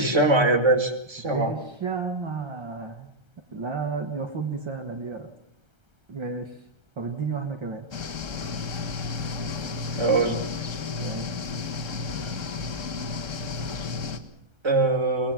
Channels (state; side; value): late; left; 1.3 ms